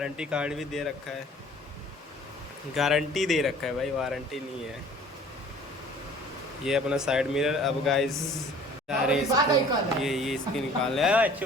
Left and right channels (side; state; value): both; normal; correlation 0.51